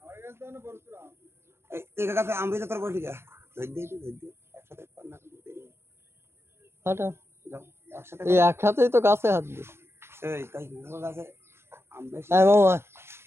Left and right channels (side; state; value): left; late; 0.12 ms